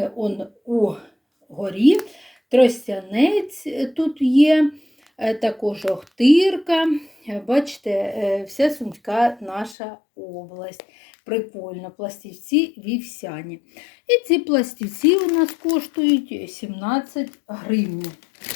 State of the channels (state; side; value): drops out; right; at 9.8 s